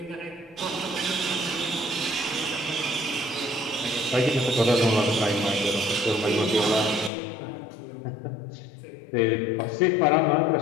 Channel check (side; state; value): right; drops out; at 7.1 s